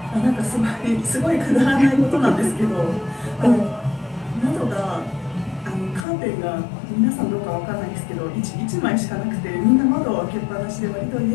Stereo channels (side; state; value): right; drops out; at 6.1 s